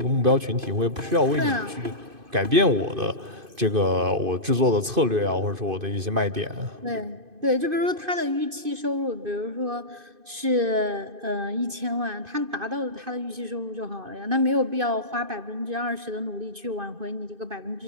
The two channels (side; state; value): left; late; 2.5 ms